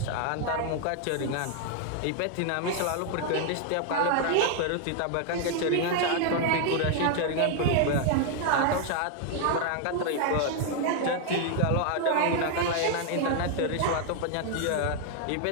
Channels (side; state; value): both; different; correlation 0.00